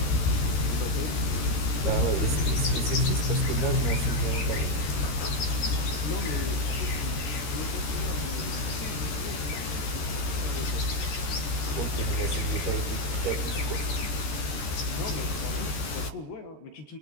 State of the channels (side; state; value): right; late; 14 ms